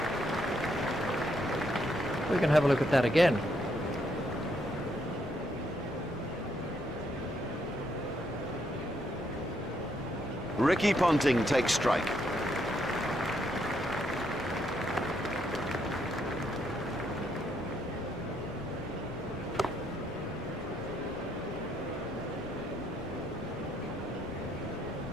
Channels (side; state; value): both; normal; correlation 0.74